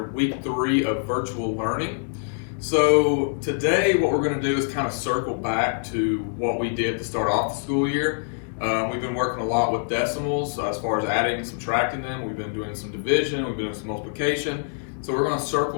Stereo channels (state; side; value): silent; right; digital silence